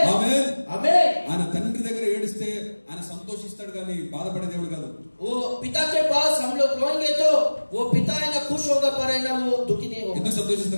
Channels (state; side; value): inverted; both; correlation -1.00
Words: ఆమేన్. आमीन। ఆయన తండ్రి దగ్గర ఏడిస్తే ఆయన సంతోషిస్తాడు కానీ బాధపడే దేవుడు కాదు. वो पिता के पास हम लोग रोएंगे तो वो पिता है ना खुश होगा, पर है ना वो दुखी नहीं होगा। ఎందుకు